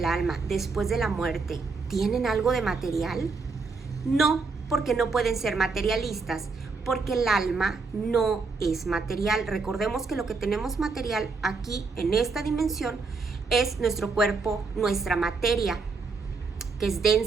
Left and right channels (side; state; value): left; quieter; 4.3 dB